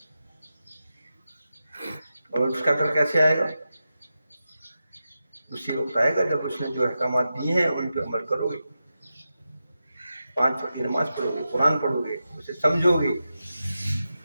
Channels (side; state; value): both; inverted; correlation -0.90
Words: اور اس کا ڈر کیسے آئے گا؟ اسی وقت آئے گا جب اس نے جو احکامات دیے ہیں ان پہ عمل کرو گے، 5 وقت کی نماز پڑھو گے، قرآن پڑھو گے، اسے سمجھو گے،